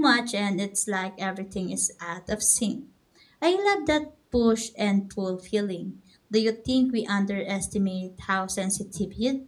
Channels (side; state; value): both; identical; correlation 1.00